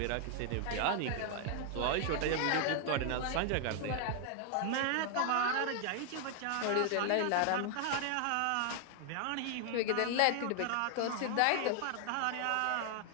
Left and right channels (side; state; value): both; different; correlation 0.00